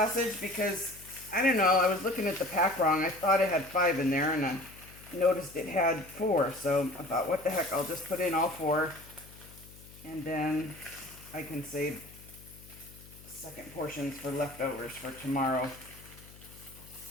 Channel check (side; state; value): left; noise; hum, 20 dB below the sound